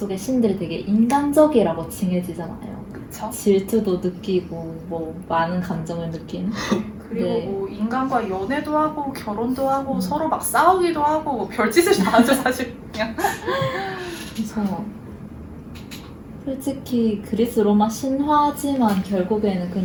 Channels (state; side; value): identical; both; correlation 1.00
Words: 신들이 되게 인간적이라고 칭해지잖아요. 그쵸? 질투도 느끼고 뭐 많은 감정을 느끼는. 그리고 네. 뭐 인간과 연애도 하고 결혼도 하고 서로 막 싸우기도 하고 뭐 별짓을 다 하죠 사실. 그냥. 그래서 솔직히 그리스 로마 신화지만 결국에는